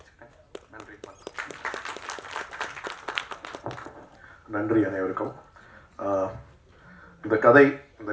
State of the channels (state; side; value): identical; both; correlation 1.00